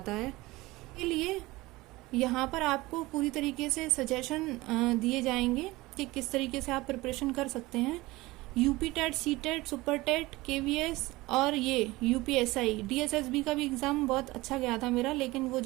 है। इसके लिए यहाँ पर आपको पूरी तरीके से सजेशन दिए जाएंगे कि किस तरीके से आप प्रिपरेशन कर सकते हैं। UP TET, C TET, super TET, KVS और ये यूपीएसआई, डीएसएसबी का भी एग्जाम बहुत अच्छा गया था मेरा, लेकिन वो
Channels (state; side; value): quieter; left; 20.3 dB